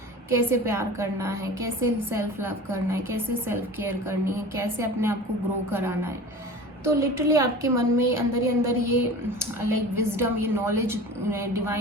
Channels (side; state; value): both; normal; correlation 0.37